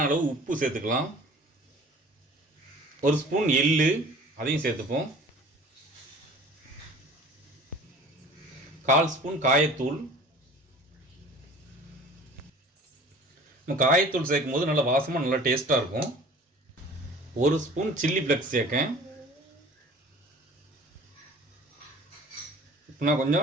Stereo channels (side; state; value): both; normal; correlation 0.46